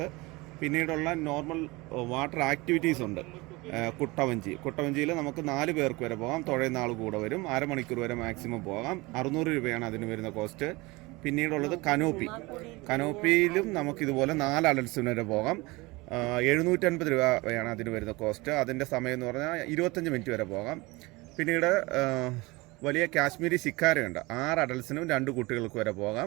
പിന്നീടുള്ള നോർമൽ വാട്ടർ ആക്ടിവിറ്റീസ് ഉണ്ട്. കുട്ടവഞ്ചിയിൽ നമുക്ക് 4 പേർക്ക് വരെ പോകാം. തുഴയുന്ന ആൾ കൂടെ വരും. അരമണിക്കൂർ വരെ മാക്സിമം പോകാം. 600 രൂപയാണ് അതിന് വരുന്ന കോസ്റ്റ്. പിന്നീടുള്ളത് കനോപ്പിയിലും നമുക്കിതുപോലെ 4 അഡൽട്സിന് വരെ പോകാം. 750 രൂപയാണ് അതിന് വരുന്ന കോസ്റ്റ്. അതിൻ്റെ സമയം എന്ന് പറഞ്ഞാൽ 25 മിനിറ്റ് വരെ പോകാം. പിന്നീട് വലിയ കാശ്മീരി ശിക്കാരയുണ്ട്. 6 അഡൽട്സിനും 2 കുട്ടികൾക്ക് വരെ പോകാം.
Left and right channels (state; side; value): quieter; left; 23.3 dB